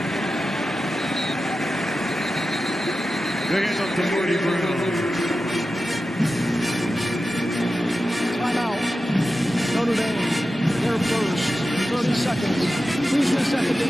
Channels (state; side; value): normal; both; correlation 0.92